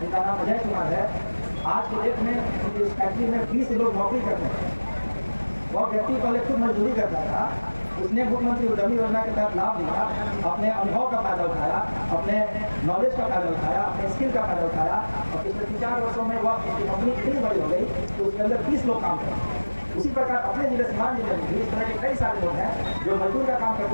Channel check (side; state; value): both; inverted; correlation -1.00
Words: जिनका नाम अजय कुमार है। आज की डेट में उनकी इस फैक्ट्री में 20 लोग नौकरी करते हैं। वह व्यक्ति पहले खुद मजदूरी करता था, उसने मुख्यमंत्री उद्यमी योजना के तहत लाभ लिया, अपने अनुभव का फायदा उठाया, अपने नॉलेज का फायदा उठाया, अपने स्किल का फायदा उठाया, और पिछले 3-4 वर्षों में वह उसकी कंपनी इतनी बड़ी हो गई कि उसके अंदर 20 लोग काम करते। उसी प्रकार अपने जिले सीवान जिले में भी इस तरह के कई सारे लोग हैं जो मजदूर का काम